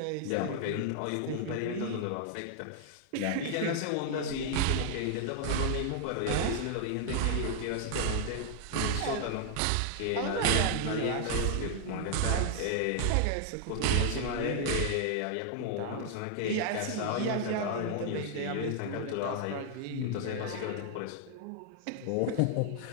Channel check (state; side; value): different; both; correlation 0.00